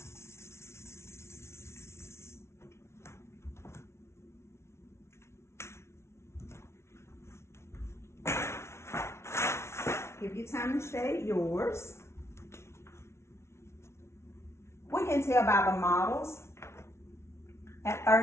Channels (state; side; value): late; right; 0.13 ms